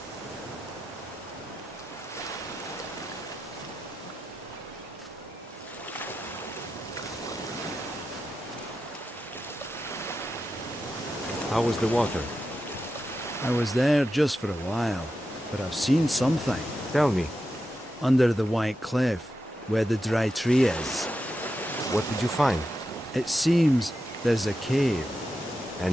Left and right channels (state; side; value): normal; both; correlation 0.89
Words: How was the water? I was there just for a while, but I've seen something. Tell me. Under the white cliff, where the dry tree is. What did you find? It seems there's a cave.